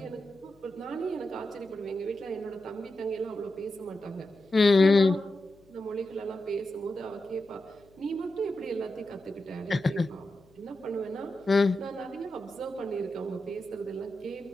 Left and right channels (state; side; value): noise; left; hum, 29 dB below the sound